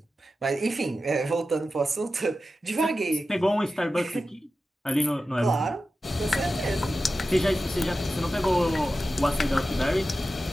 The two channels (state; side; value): normal; both; correlation 0.93